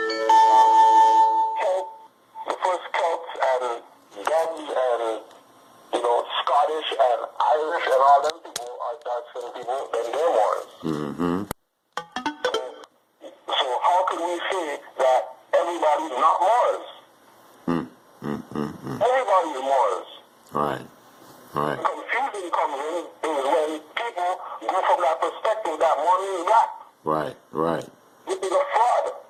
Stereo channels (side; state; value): both; identical; correlation 1.00